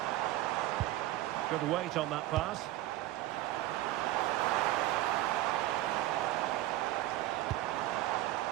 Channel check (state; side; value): quieter; left; 15.8 dB